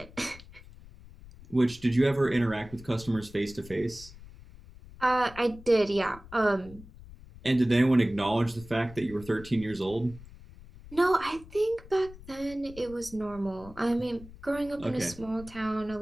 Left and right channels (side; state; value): left; noise; rumble, 18 dB below the sound